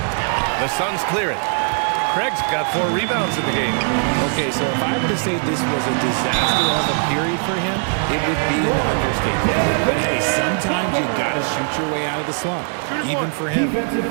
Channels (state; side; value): silent; left; 58 dB below the other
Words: The Suns clear it. Craig's got 4 rebounds in the game. Okay, so if I were to say this was a disaster of a period for him, it would be an understatement. But hey, sometimes you got to shoot your way out of the slump, even for him. Defensive